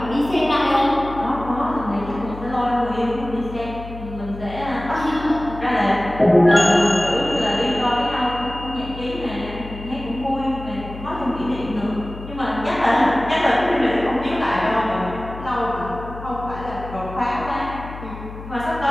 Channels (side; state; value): left; noise; hum, 12 dB below the sound